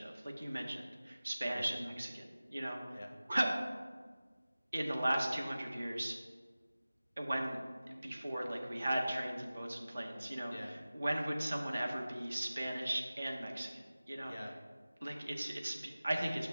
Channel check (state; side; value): inverted; both; correlation -0.97